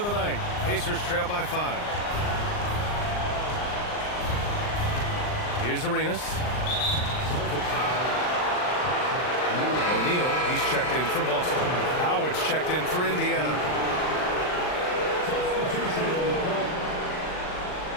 the night. Pacers trail by 5. Here's Arenas. O'Neal, he's checked in for Boston. Howard's checked in for Indiana.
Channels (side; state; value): right; late; 39 ms